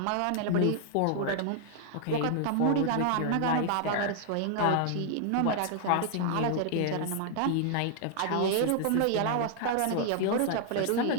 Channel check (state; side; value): different; both; correlation 0.00